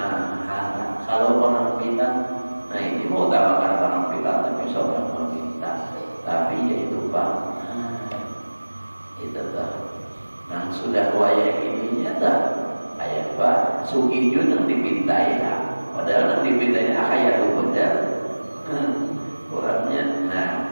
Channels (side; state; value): both; inverted; correlation -1.00